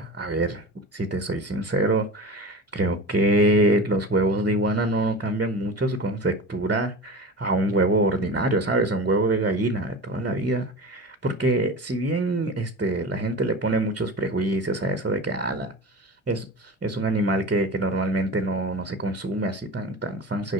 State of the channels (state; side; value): normal; both; correlation 0.31